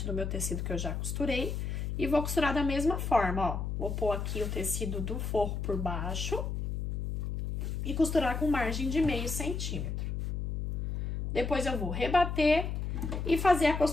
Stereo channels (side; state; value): left; noise; hum, 2 dB below the sound